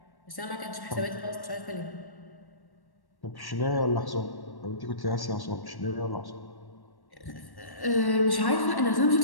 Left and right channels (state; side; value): late; right; 1.1 ms